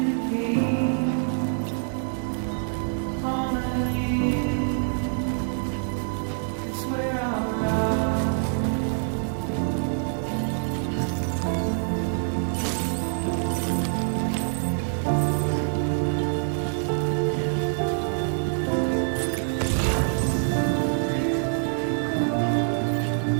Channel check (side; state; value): left; silent; 56 dB below the other